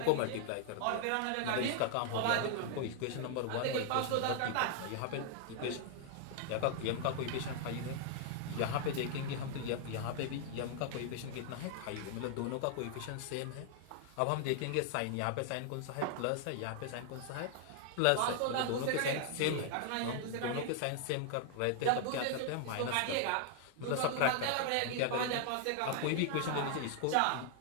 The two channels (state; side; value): different; both; correlation 0.00